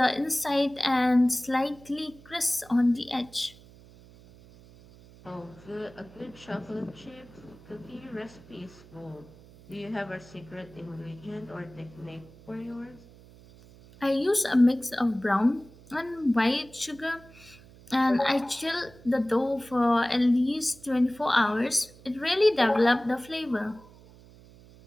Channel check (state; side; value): noise; right; hum, 23 dB below the sound